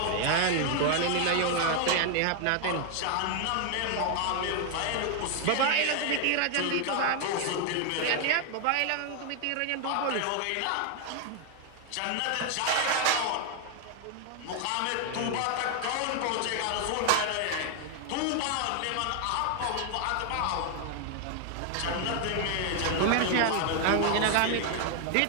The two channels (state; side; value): different; both; correlation 0.00